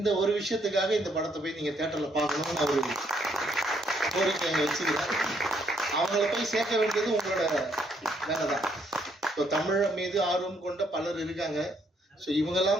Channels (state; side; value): normal; both; correlation 0.71